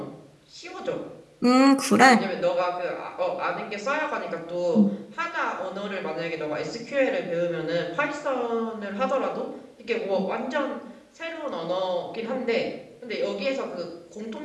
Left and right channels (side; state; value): both; identical; correlation 1.00